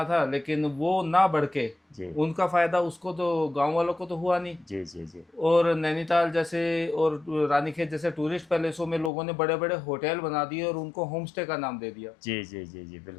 था, लेकिन वो ना बढ़ के जी उनका फायदा उसको तो गांव वालों को तो हुआ नहीं। जी जी जी और नैनीताल जैसे और रानीखेत जैसे टूरिस्ट पैलेसों में लोगों ने बड़े बड़े होटल बना दिए और उनको होम स्टे का नाम दे दिया। जी जी जी जी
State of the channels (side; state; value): right; drops out; at 9.1 s